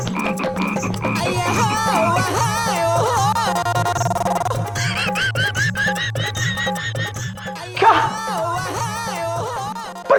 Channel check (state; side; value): identical; both; correlation 1.00